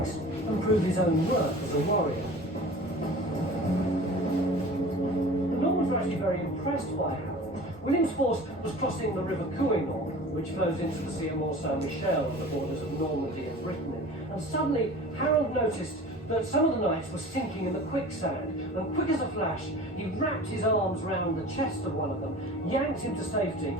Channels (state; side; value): normal; both; correlation 0.40